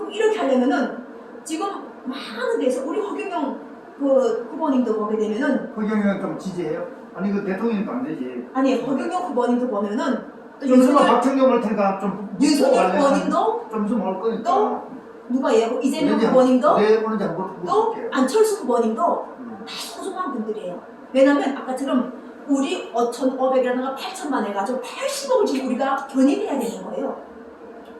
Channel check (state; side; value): identical; both; correlation 1.00